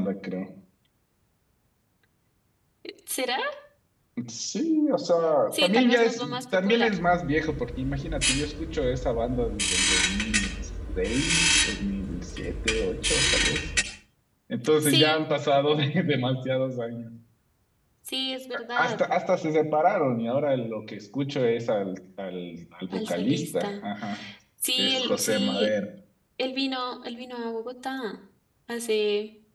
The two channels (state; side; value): identical; both; correlation 1.00